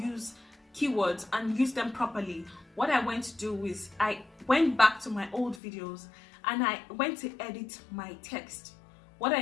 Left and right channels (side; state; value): right; drops out; at 5.6 s